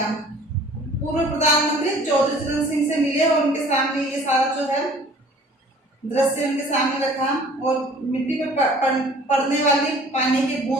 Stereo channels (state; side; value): normal; both; correlation 0.51